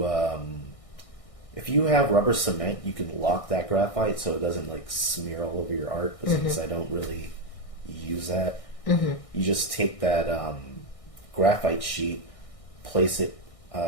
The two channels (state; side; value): late; right; 1.6 ms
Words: if you have rubber cement, you can lock that graphite so it doesn't like smear all over your art. But since I don't really use that, you just take that graphite sheet, place it